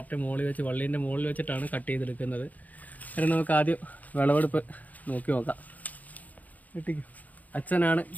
മുകളിൽ വെച്ച് വള്ളീൻ്റെ മുകളിൽ വെച്ചിട്ടാണ് കട്ട് ചെയ്തെടുക്കുന്നത്. അതിന് നമുക്ക് ആദ്യം വിളവെടുപ്പ് നോക്കി നോക്കാം. വെട്ടിക്കും. അച്ഛനാണ്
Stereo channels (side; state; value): right; late; 0.078 ms